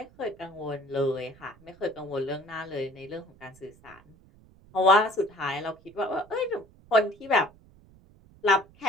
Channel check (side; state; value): right; noise; rumble, 26 dB below the sound